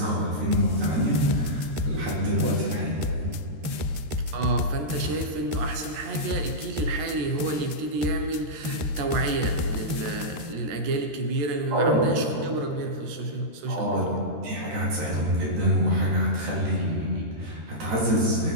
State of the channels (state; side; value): late; left; 13 ms